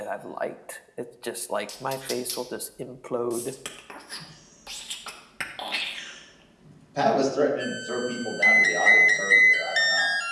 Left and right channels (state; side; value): identical; both; correlation 1.00